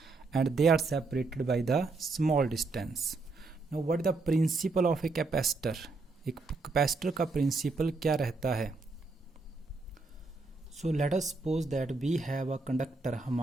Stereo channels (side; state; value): left; quieter; 3.7 dB